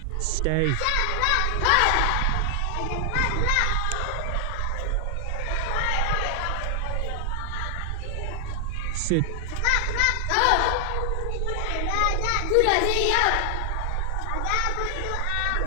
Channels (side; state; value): both; different; correlation 0.00